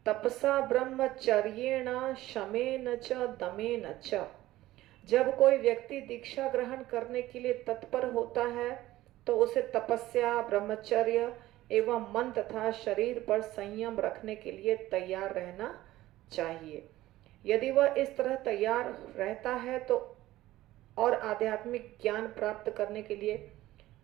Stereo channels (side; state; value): left; quieter; 16.0 dB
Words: तपसा ब्रह्मचर्येण शमेन च दमेन च। जब कोई व्यक्ति दीक्षा ग्रहण करने के लिए तत्पर होता है तो उसे तपस्या, ब्रह्मचर्य एवं मन तथा शरीर पर संयम रखने के लिए तैयार रहना चाहिए। यदि वह इस तरह तैयार रहता है तो और आध्यात्मिक ज्ञान प्राप्त करने के लिए